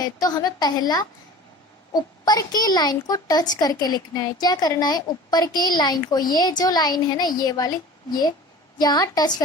तो हमें पहला ऊपर की लाइन को टच करके लिखना है. क्या करना है? ऊपर की लाइन को, ये जो लाइन है ना, ये वाली, ये यहाँ टच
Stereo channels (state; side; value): normal; both; correlation 0.40